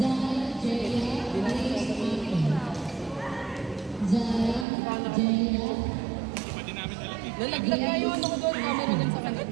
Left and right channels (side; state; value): left; drops out; at 4.7 s